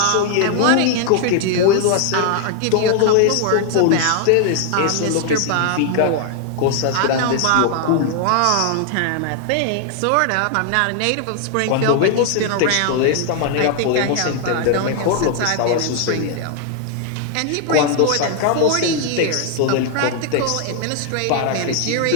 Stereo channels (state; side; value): different; both; correlation 0.00